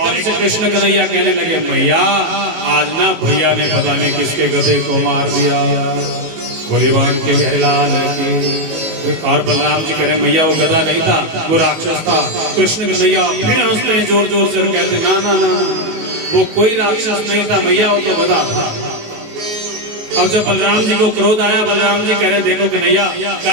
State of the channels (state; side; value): late; left; 19 ms